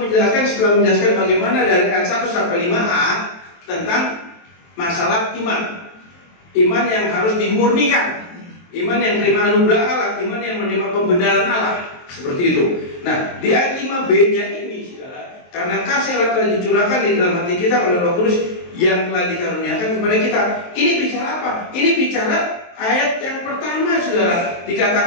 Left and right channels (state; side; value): late; right; 23 ms